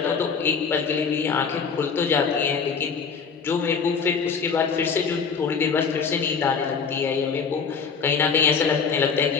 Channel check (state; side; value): quieter; right; 5.8 dB